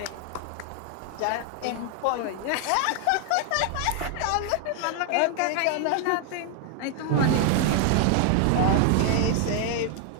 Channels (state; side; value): different; both; correlation 0.00